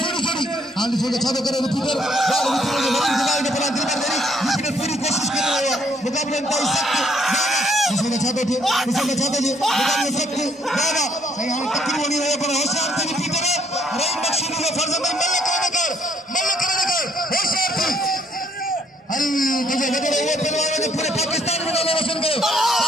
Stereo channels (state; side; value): normal; both; correlation 0.66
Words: हाल छोड़े छादो करे रिपीटर बार रिपीटर ने बड़ी दिमाग में पड़ा दिलबर डेरी रिपीटर पूरी कोशिश कर रहा है मुकाबले में ताई सकते इसने छादो जी मुकाबले सकते बाबा सही हम तकरीर बनी रहे पर होशियार थे रिपीटर रही मकसूद ने फर्ज में मल्ल कर होशियार थे अरे मुझे लग रहा है पहलवान ने पूरे पाकिस्तान में नाम रोशन करो